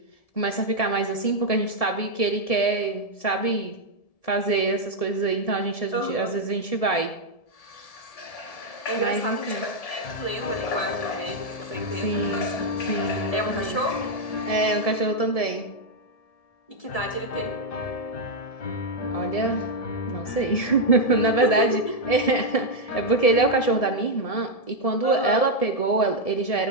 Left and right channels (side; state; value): right; late; 1.7 ms